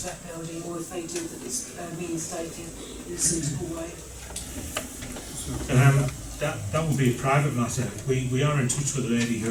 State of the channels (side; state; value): both; identical; correlation 1.00